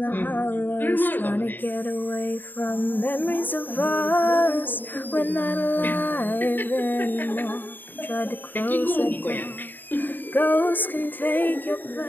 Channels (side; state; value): right; late; 0.091 ms